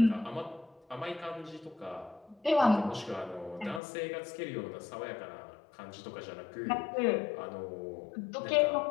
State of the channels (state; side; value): drops out; right; at 3.8 s